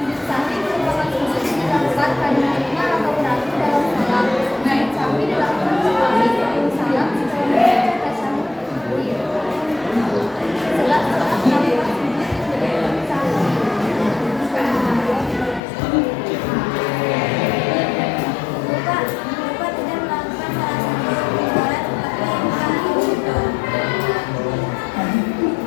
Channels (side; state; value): right; drops out; at 15.6 s